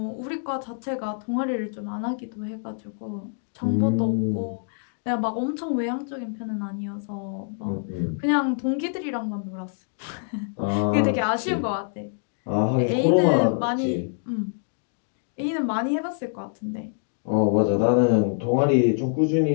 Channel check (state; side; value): silent; right; digital silence